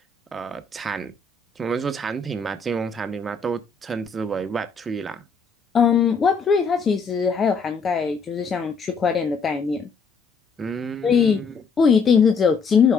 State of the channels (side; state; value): right; quieter; 4.7 dB